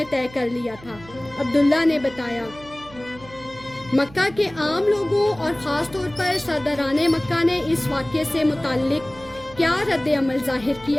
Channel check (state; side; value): noise; right; hum, 20 dB below the sound